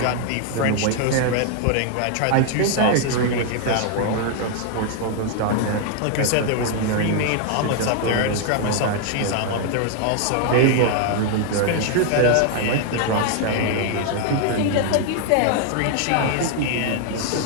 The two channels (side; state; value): both; different; correlation 0.00